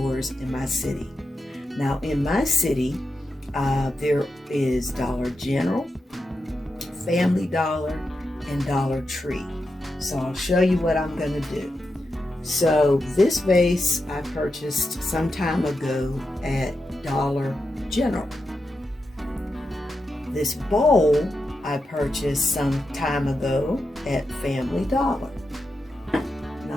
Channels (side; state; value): both; normal; correlation 0.88